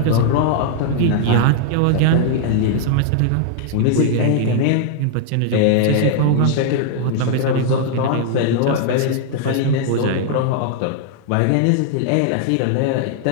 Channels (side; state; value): both; different; correlation 0.00